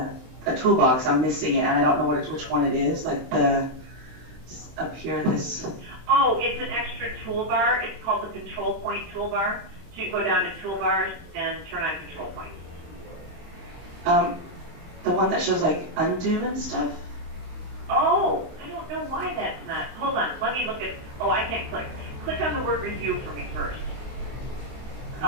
toolbox. I'm missing it and I don't know which one it is. Like up here this. Oh, it's an extra toolbar. It's called the control point toolbar. So you go down to toolbars and turn on control points. The one that shows like undo and stuff? Oh, I don't know why that's not. Hold on, let me look at. Oh, I can't click. Click on the word review for me first.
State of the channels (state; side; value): late; left; 23 ms